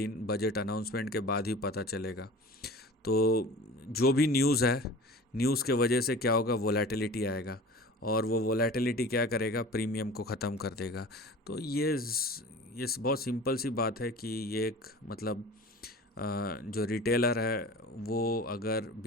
बजट अनाउंसमेंट के बाद ही पता चलेगा। तो जो भी न्यूज़ है, न्यूज़ के वजह से क्या होगा, वोलेटिलिटी आएगा, और वो वोलेटिलिटी क्या करेगा, प्रीमियम को ख़त्म कर देगा। तो ये बहुत सिंपल सी बात है कि ये एक मतलब जो रिटेलर है वो अगर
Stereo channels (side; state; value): both; normal; correlation 0.40